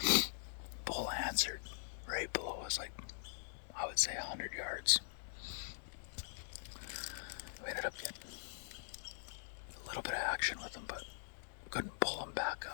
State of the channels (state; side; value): silent; right; digital silence